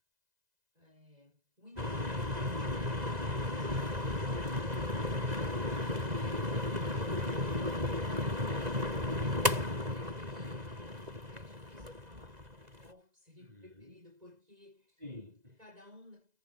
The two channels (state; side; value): late; left; 2.0 ms